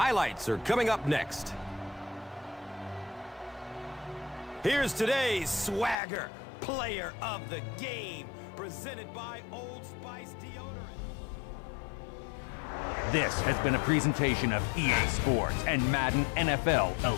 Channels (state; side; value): drops out; right; at 6.0 s